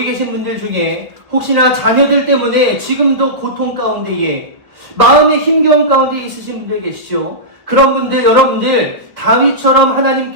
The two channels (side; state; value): left; late; 1.5 ms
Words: 계신 분들 중에 혹시나 자녀들 때문에 지금도 고통 가운데에 마음의 힘겨움 가운데 있으신 분들 계시죠? 그런 분들, 여러분들 다윗처럼